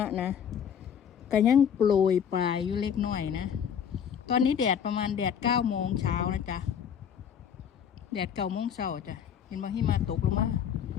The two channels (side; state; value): right; quieter; 8.2 dB